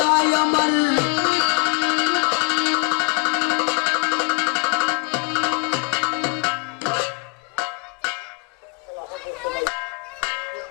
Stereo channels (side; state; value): right; quieter; 29.8 dB